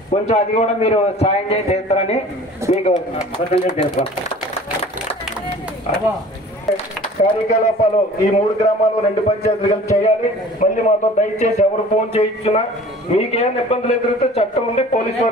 కొంచెం అది కూడా మీరు సాయం చేసి చేస్తారని మీకు తెలుసు. కార్యకలాపాలు ఈ 3 గ్రామాలు 2 పంచాయతీలు కలిసి చేయాలి. మళ్ళీ మాతో దయచేసి ఎవరు ఫోన్ చేయించున్నా మీకేమైనా ఇబ్బందులు ఎదురైతే చట్టం ఉంది, పోలీసు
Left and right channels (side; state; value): both; normal; correlation 0.46